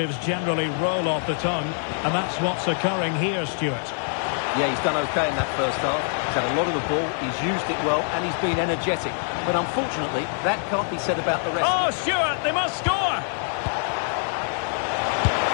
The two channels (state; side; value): silent; right; digital silence